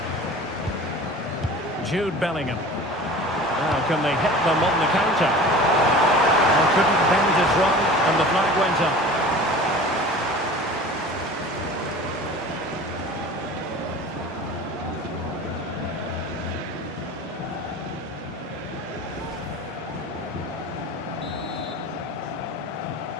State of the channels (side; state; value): both; normal; correlation 0.39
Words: Jude Bellingham. Now can they hit them on the counter? Well, couldn't bend his run and the flag went up.